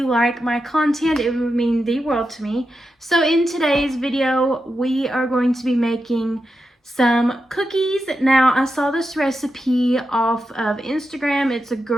like my content. It would mean the world to me. So in today's video we are going to be making some cookies. Now, I saw this recipe off of Instagram. It's a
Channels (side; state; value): both; normal; correlation 0.88